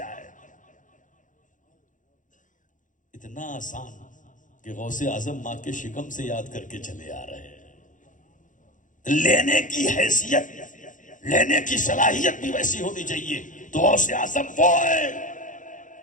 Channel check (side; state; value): right; late; 0.37 ms